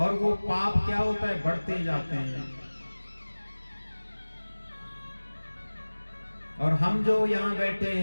वो पाप क्या होता है? बढ़ते जाते हैं। और हम जो यहाँ बैठे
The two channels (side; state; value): both; inverted; correlation -1.00